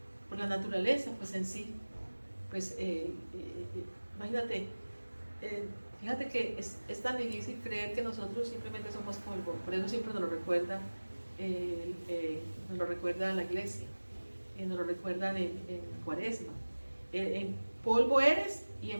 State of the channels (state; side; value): inverted; both; correlation -1.00